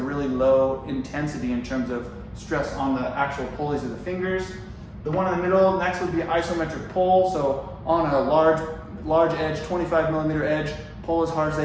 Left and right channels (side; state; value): both; identical; correlation 1.00